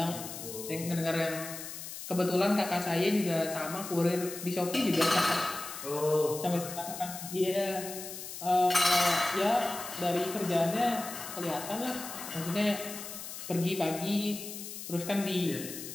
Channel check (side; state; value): left; noise; hiss, 10 dB below the sound